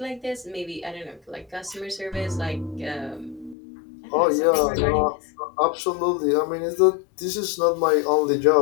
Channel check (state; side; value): drops out; right; at 3.6 s